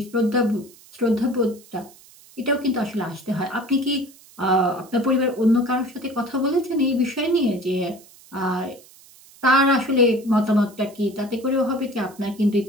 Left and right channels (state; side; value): noise; right; hiss, 24 dB below the sound